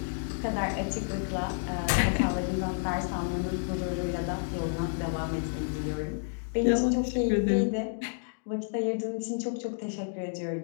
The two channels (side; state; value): right; silent; digital silence